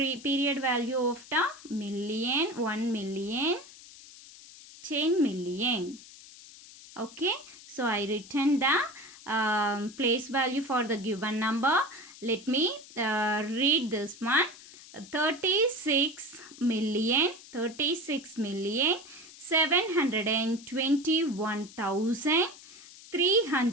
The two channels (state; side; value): noise; left; hiss, 19 dB below the sound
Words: value of the million, 1 million, 10 million. Okay, so I written the place value for the given number. Let me read this one. 36 million